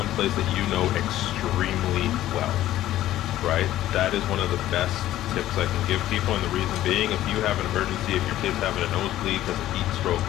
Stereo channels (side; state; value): right; quieter; 13.8 dB